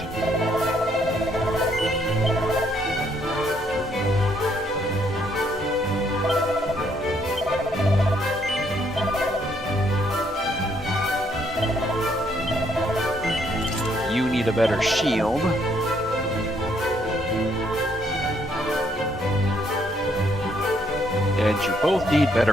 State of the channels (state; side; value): normal; both; correlation 0.71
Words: You need a better shield. And you both need